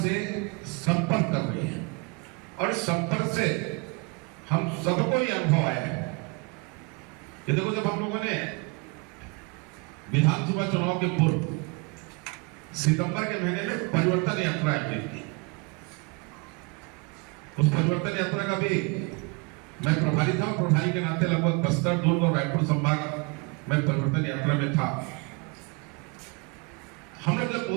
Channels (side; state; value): left; quieter; 29.8 dB